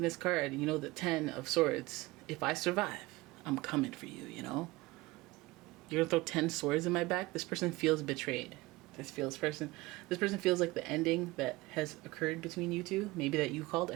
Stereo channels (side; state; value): left; quieter; 20.8 dB